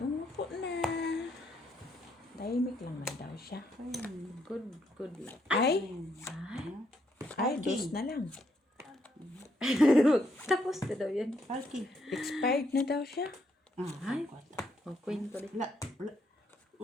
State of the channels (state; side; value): normal; both; correlation 0.74